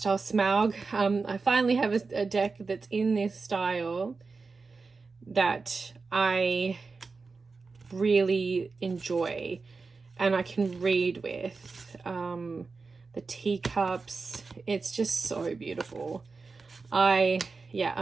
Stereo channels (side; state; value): left; quieter; 4.3 dB